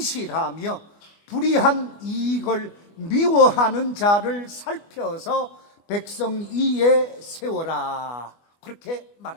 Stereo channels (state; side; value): late; right; 24 ms